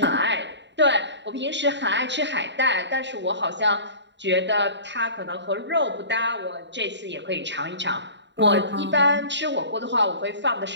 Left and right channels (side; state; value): left; late; 0.52 ms